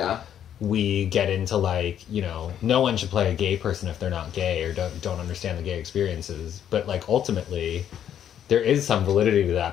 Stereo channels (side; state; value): right; quieter; 9.8 dB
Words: we get into like, you know, no one should play a gay person if they're not gay or don't understand the gay experiences. But like ultimately there is some validity to